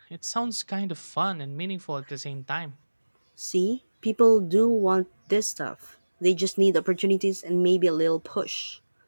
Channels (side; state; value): both; inverted; correlation -1.00